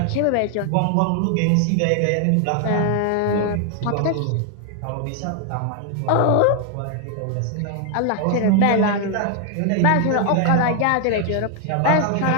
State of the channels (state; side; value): different; both; correlation 0.00